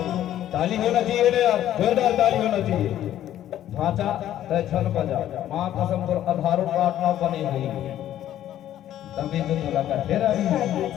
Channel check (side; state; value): right; quieter; 12.0 dB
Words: ताली होना चाहिए ना यार, जोरदार ताली होना चाहिए। ढांचा तय छल बजा माँ कसम पर आधारों प्रार्थना बनी हुई तभी तो तुला का तेरा